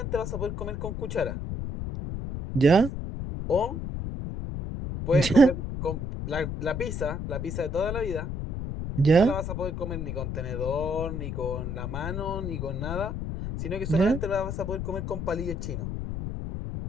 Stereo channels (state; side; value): noise; left; rumble, 4 dB below the sound